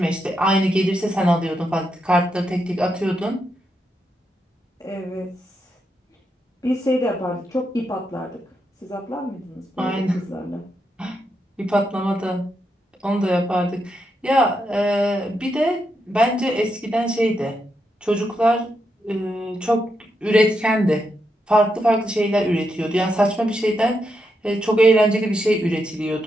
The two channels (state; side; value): normal; both; correlation 0.83